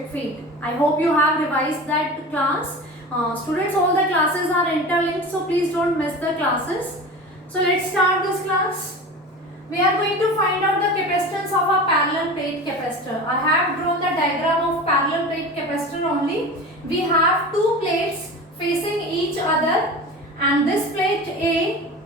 field. I hope you have revised that class. Students, all the classes are interlinked, so please don't miss the classes. So let's start this class. We are going to find out the capacitance of a parallel plate capacitor. I have drawn the diagram of parallel plate capacitor only. We have two plates facing each other, and this plate A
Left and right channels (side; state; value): both; normal; correlation 0.33